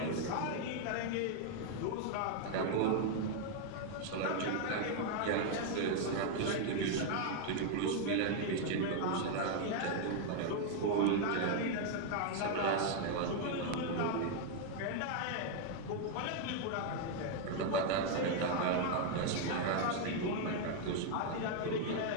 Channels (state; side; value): different; both; correlation 0.00